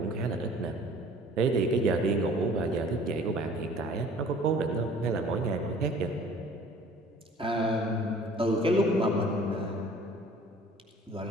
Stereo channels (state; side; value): normal; both; correlation 0.50